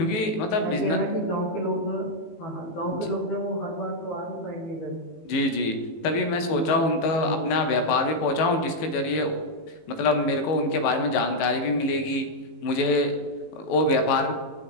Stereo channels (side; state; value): right; late; 18 ms